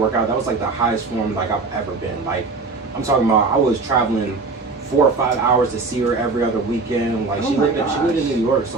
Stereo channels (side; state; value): left; quieter; 4.0 dB